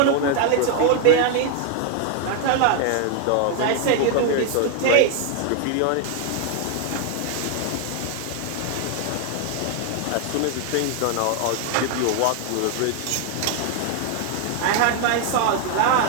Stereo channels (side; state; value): both; different; correlation 0.00